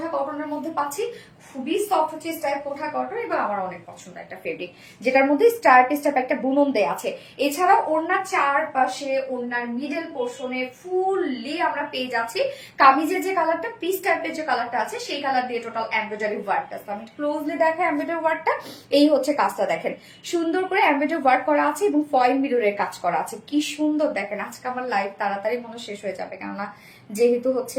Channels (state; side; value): identical; both; correlation 1.00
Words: কটনের মধ্যে পাচ্ছি, খুবই সফট হচ্ছে স্ট্রাইপ কোঠা কটন এবং আমার অনেক পছন্দ একটা ফেব্রিক, যেটার মধ্যে স্ট্রাইপ একটা বুনন দেয়া আছে। এছাড়াও ওড়নার চারপাশে ওড়নার মিডল পোর্শনে ফুললি আমরা পেয়ে যাচ্ছি কামিজের যে কালারটা পিস টাইপের যে কালারটা আছে সেই কালার দিয়ে টোটাল এমব্রয়ডারি ওয়ার্কটা। আমি ক্লোজলি দেখা এমব্রয়ডারি ওয়ার্কটা, এই হচ্ছে কাজটা দেখেন সুন্দর করে এমব্রয়ডারি ওয়ার্ক করা আছে এবং ফয়েল মিররের কাজ করা আছে। কি সুন্দর দেখেন। আজকে আমার লাইভ তাড়াতাড়ি মনে শেষ হয়ে যাবে, কেননা যেহেতু